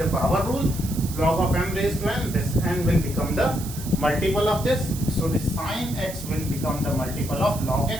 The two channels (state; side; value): noise; right; hiss, 12 dB below the sound